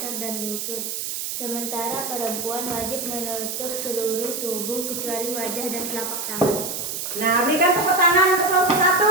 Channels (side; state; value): right; noise; hiss, 4 dB below the sound